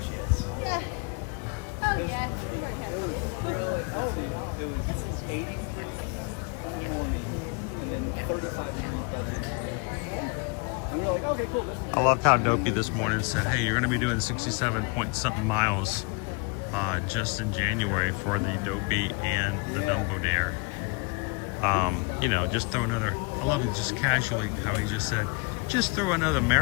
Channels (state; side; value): quieter; right; 30.9 dB